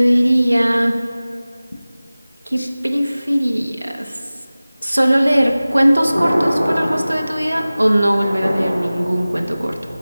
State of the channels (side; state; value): both; inverted; correlation -0.98